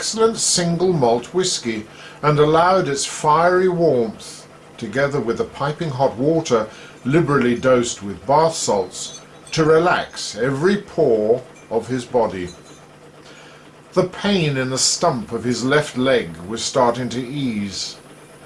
single malt whisky and allowed its fiery warmth, together with the piping hot water liberally dosed with bath salts, to relax every pore of his body. The pain in the stump of his left leg was starting to ease.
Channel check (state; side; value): identical; both; correlation 1.00